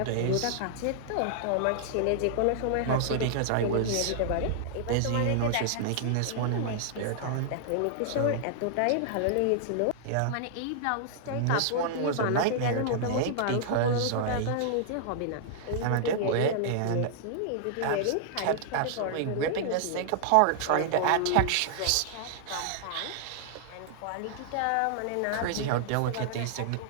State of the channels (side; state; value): both; different; correlation -0.01